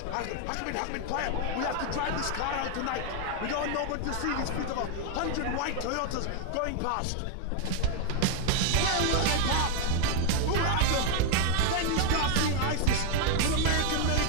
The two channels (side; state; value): both; different; correlation 0.01